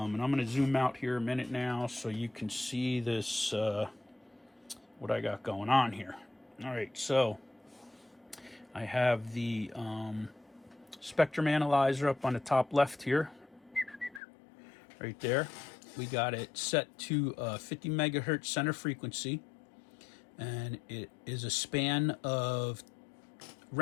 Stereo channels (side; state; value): right; drops out; at 14.2 s